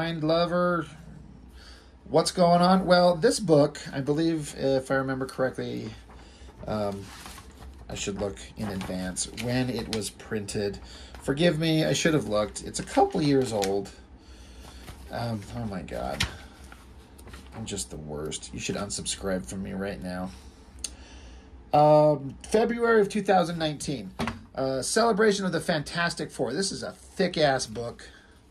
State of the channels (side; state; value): both; identical; correlation 1.00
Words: lover. What's going on? Well, this book, I believe, if I remember correctly, I should look in advance when it was printed. Forgive me, I should have looked. It's a couple years old. Oh my God. I'm just the worst. You should unsubscribe from me right now. February of 2019. Celebration of the Fantastic Four. This is a thick-ass book.